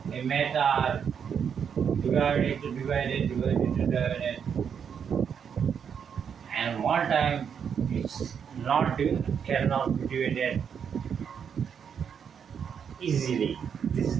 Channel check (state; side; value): quieter; left; 7.4 dB